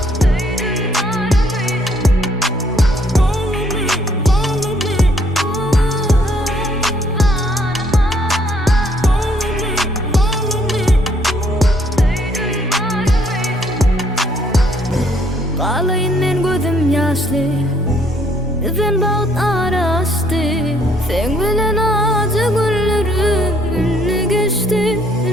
Ağlayın men gözüm yaşlı, sen bağıt araştı. Sen bilen acı günlerim ünlü geçti,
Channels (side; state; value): both; normal; correlation 0.66